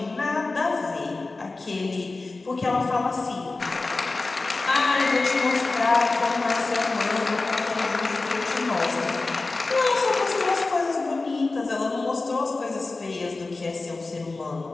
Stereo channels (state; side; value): quieter; right; 3.5 dB